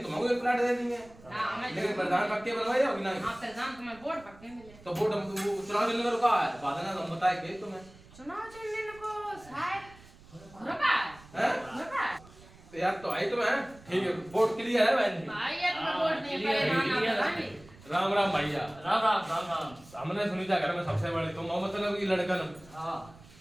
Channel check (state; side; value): noise; right; rumble, 22 dB below the sound